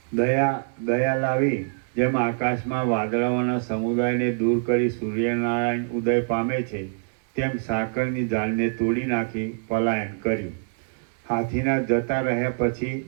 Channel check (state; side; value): silent; left; 62 dB below the other